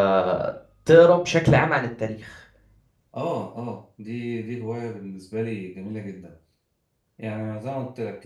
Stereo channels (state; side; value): identical; both; correlation 1.00